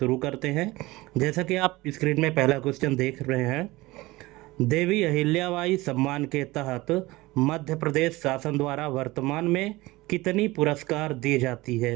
करते हैं। जैसा कि आप स्क्रीन में पहला क्वेश्चन देख रहे हैं, देवी अहिल्याबाई सम्मान के तहत मध्य प्रदेश शासन द्वारा वर्तमान में कितनी पुरस्कार दी जाती है।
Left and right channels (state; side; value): quieter; left; 20.3 dB